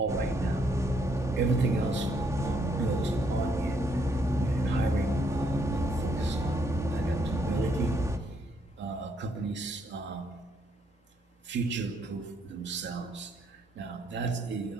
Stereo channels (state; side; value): normal; both; correlation 0.72